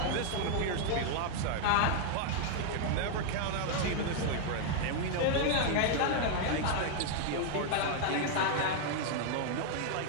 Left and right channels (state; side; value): different; both; correlation 0.00